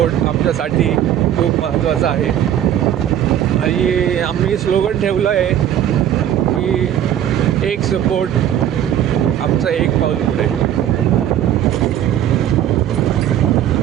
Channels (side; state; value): left; quieter; 10.8 dB